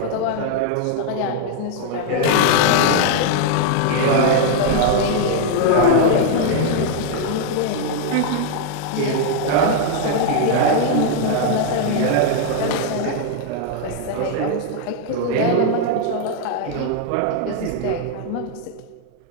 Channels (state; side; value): different; both; correlation 0.00